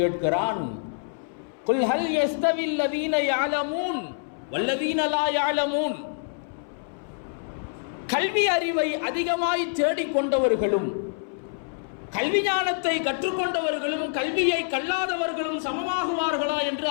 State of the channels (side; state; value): right; silent; 61 dB below the other